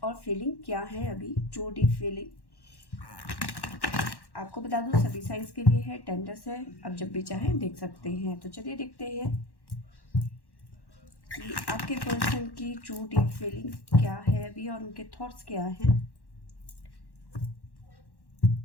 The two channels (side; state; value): right; late; 1.1 ms